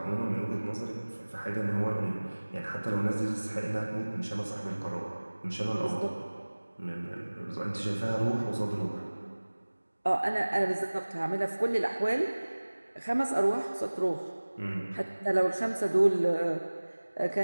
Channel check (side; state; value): both; inverted; correlation -1.00